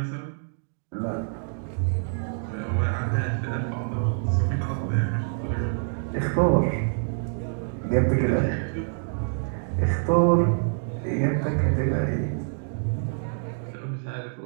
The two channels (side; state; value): left; silent; digital silence